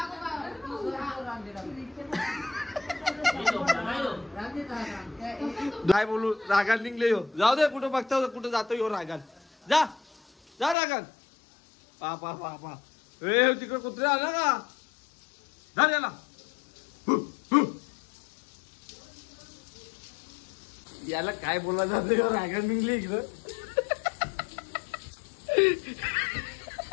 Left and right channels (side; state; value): right; drops out; at 10.8 s